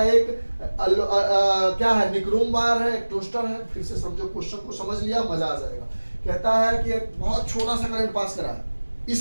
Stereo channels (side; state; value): both; inverted; correlation -1.00